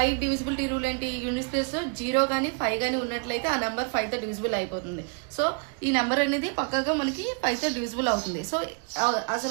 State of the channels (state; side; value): quieter; left; 37.7 dB